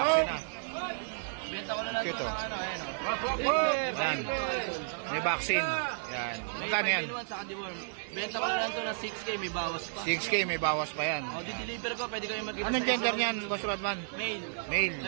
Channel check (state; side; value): silent; left; digital silence